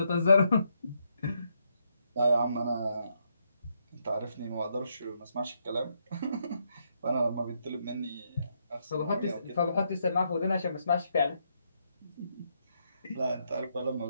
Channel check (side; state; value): both; inverted; correlation -0.78